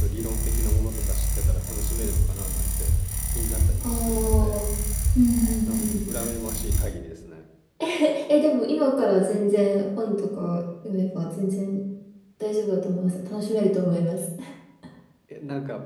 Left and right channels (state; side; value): identical; both; correlation 1.00